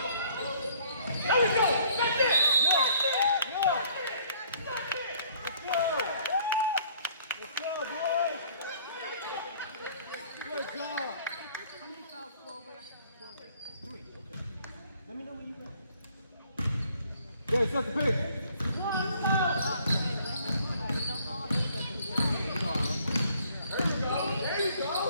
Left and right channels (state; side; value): inverted; both; correlation -0.59